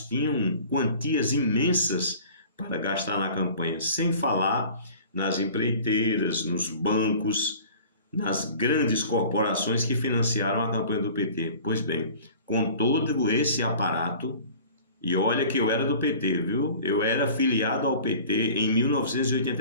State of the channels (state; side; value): inverted; both; correlation -0.45